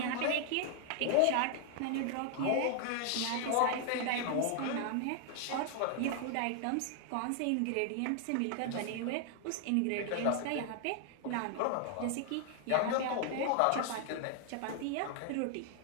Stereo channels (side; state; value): both; different; correlation 0.00